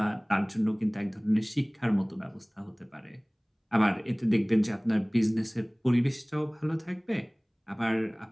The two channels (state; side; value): identical; both; correlation 1.00